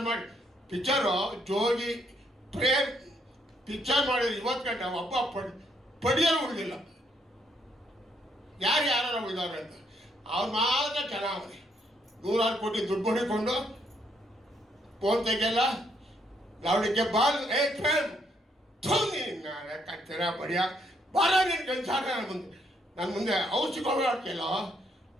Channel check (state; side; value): normal; both; correlation 0.72